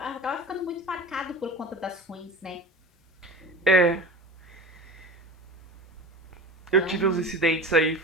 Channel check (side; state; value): both; normal; correlation 0.34